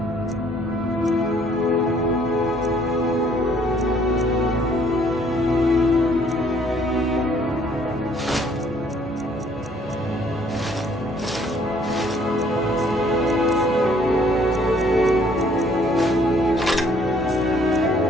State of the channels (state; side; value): normal; both; correlation 0.62